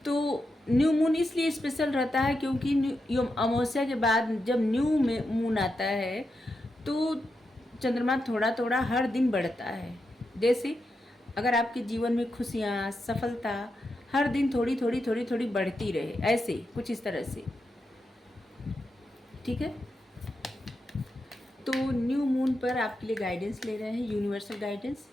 तो न्यू मून इसलिए स्पेशल रहता है क्योंकि अमावस्या के बाद जब न्यू मून आता है तो चंद्रमा थोड़ा थोड़ा हर दिन बढ़ता है। जैसे अगर आपके जीवन में खुशियाँ, सफलता हर दिन थोड़ी थोड़ी थोड़ी थोड़ी बढ़ती रहे, ऐसे कुछ इस तरह से। ठीक है, तो न्यू मून पर आपके लिए गाइडेंस ले रहे हैं, यूनिवर्सल गाइडेंस।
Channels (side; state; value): both; normal; correlation 0.86